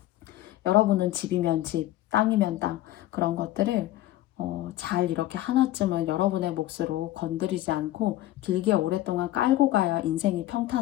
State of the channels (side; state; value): right; quieter; 14.9 dB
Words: 여러분은 집이면 집, 땅이면 땅 그런 것들을 잘 이렇게 하나쯤은 여러분의 몫으로 건드리지 않고 길게 오랫동안 깔고 가야 인생이